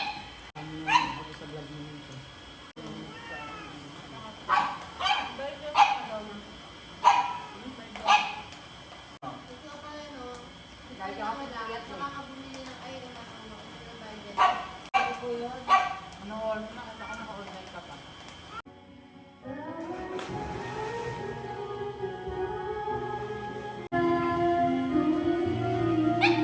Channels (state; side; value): identical; both; correlation 1.00